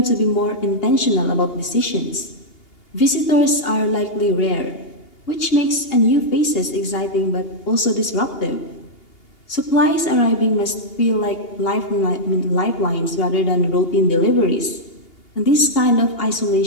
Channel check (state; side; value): late; right; 2.8 ms